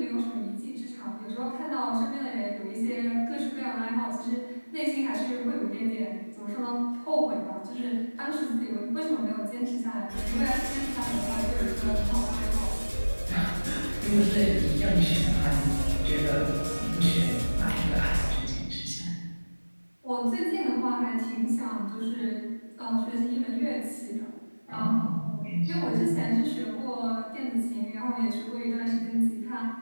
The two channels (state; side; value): inverted; both; correlation -1.00